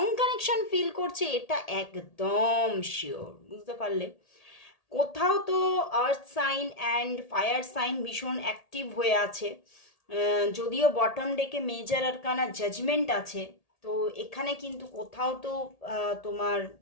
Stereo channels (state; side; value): late; right; 1.8 ms